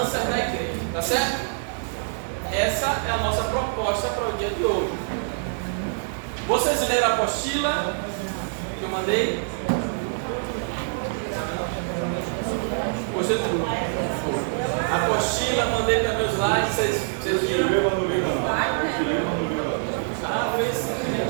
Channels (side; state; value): left; silent; digital silence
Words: da igreja, tá certo? Essa é a nossa proposta para o dia de hoje. Vocês leram a apostila que eu mandei? Gostei tudo. A apostila, mandei também os slides, vocês viram?